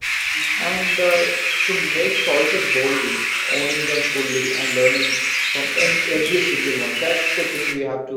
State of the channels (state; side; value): identical; both; correlation 1.00